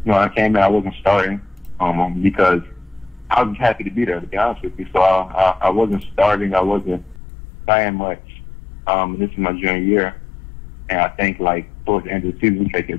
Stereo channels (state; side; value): drops out; right; at 7.2 s